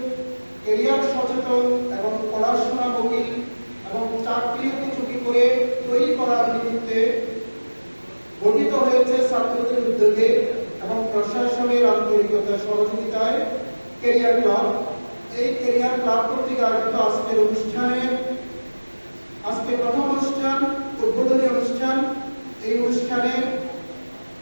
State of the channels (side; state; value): both; inverted; correlation -1.00